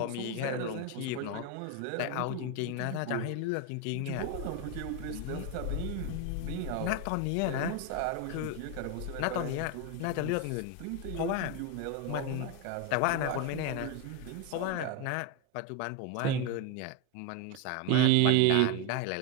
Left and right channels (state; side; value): different; both; correlation 0.01